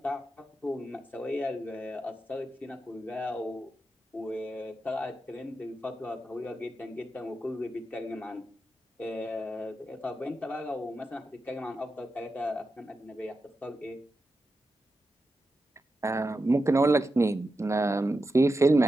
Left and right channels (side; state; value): both; normal; correlation 0.89